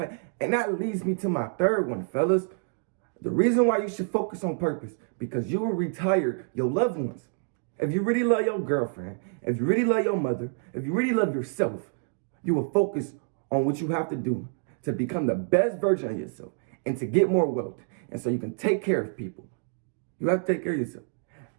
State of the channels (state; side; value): silent; left; 60 dB below the other